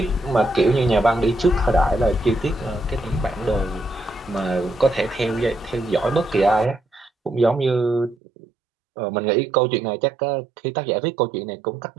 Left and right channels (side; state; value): left; drops out; at 8.2 s